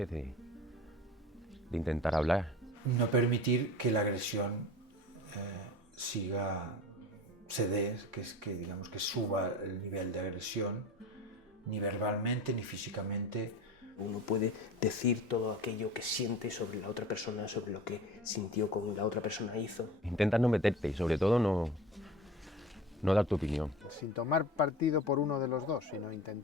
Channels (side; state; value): both; normal; correlation 0.36